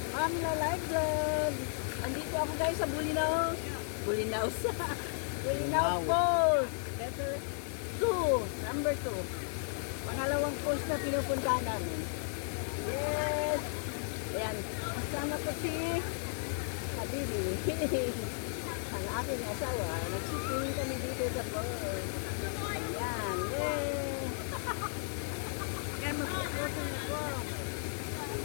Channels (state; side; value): silent; right; 55 dB below the other